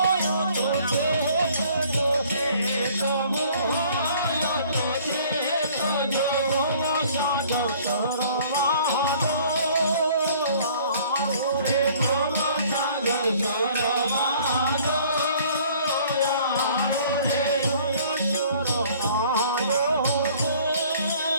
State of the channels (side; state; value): both; inverted; correlation -0.55